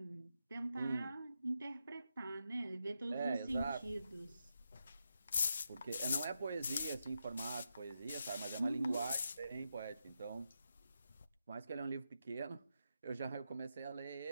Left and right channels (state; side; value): inverted; both; correlation -0.85